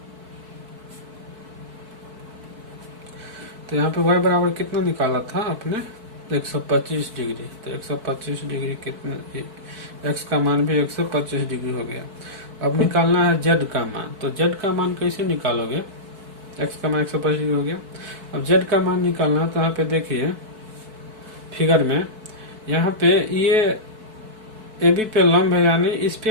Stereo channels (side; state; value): left; late; 4.6 ms